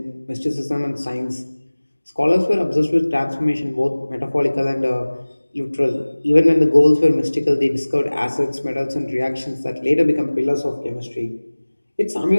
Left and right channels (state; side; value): inverted; both; correlation -1.00